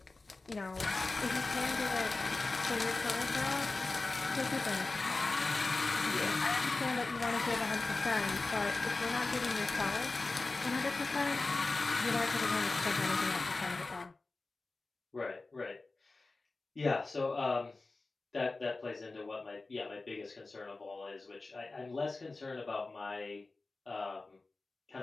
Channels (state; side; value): quieter; right; 3.5 dB